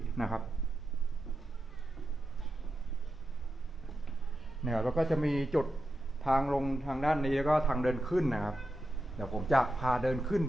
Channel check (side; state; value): both; normal; correlation 0.89